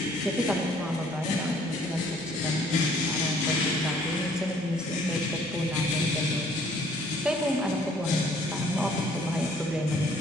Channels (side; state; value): both; normal; correlation 0.60